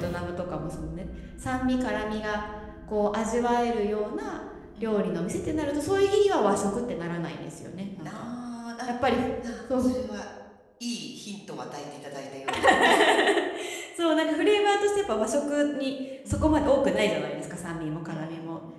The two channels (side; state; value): both; identical; correlation 1.00